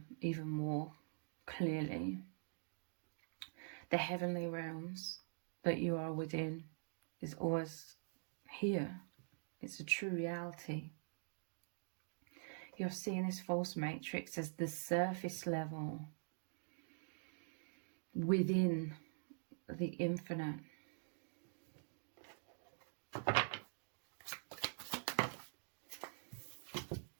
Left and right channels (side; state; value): left; silent; digital silence